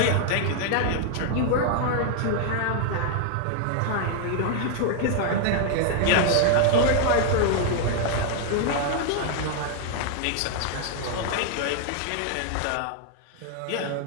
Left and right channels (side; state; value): both; different; correlation 0.00